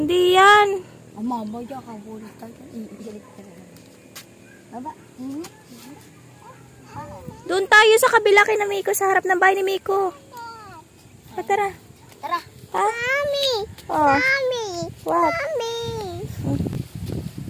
yan! Mama, diyan ka bulit tayo. Iilit ka rin. Baba. Doon tayo sa kabila kay na Miko, sa harap ng bahay ni Miko. Tara. Tara. Ha? Mommy! Oh. Mommy! What? Mommy!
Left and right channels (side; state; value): both; identical; correlation 1.00